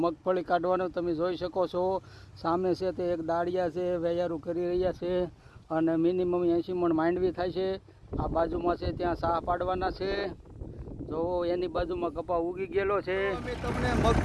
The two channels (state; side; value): identical; both; correlation 1.00